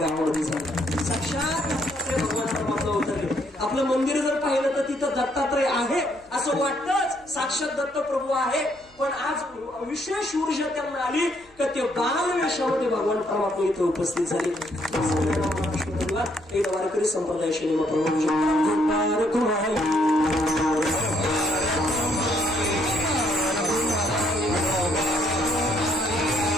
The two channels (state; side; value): noise; right; hum, 29 dB below the sound